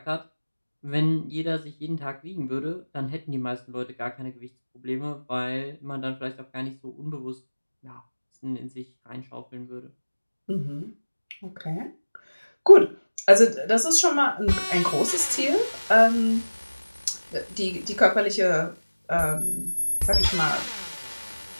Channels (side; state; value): both; inverted; correlation -1.00